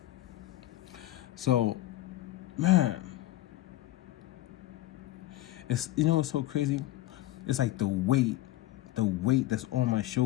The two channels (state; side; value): quieter; right; 16.1 dB